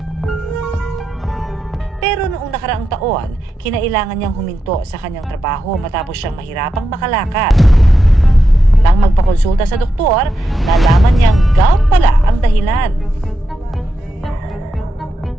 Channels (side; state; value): both; normal; correlation 0.86